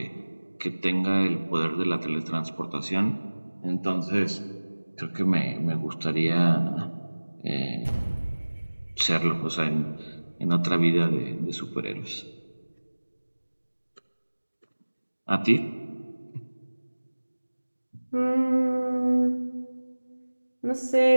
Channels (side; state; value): both; inverted; correlation -1.00